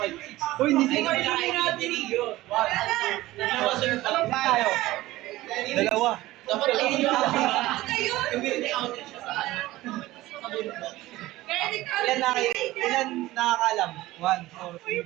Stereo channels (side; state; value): left; quieter; 17.4 dB